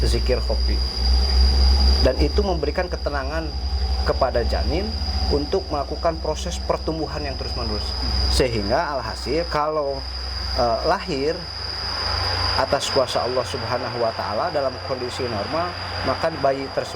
zikir khofi. Dan itu memberikan ketenangan kepada janin untuk melakukan proses pertumbuhan yang terus-menerus. Sehingga alhasil kalau lahir atas kuasa Allah Subhanahu wa taala dalam kondisi normal, maka bayi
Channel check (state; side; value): identical; both; correlation 1.00